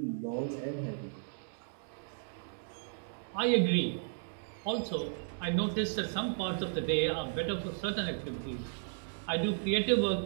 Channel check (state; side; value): silent; left; digital silence